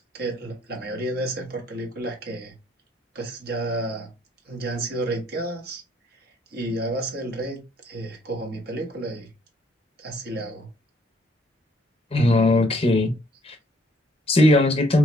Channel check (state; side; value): normal; both; correlation 0.65